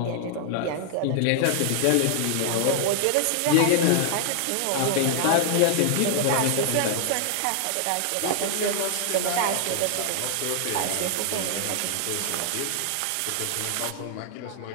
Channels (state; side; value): different; both; correlation 0.00